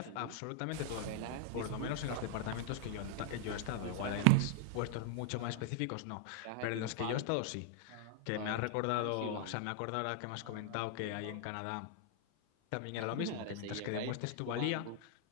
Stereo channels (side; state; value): both; different; correlation 0.00